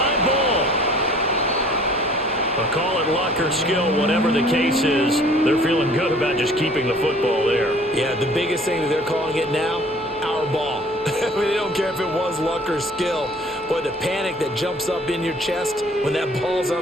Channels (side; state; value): both; normal; correlation 0.53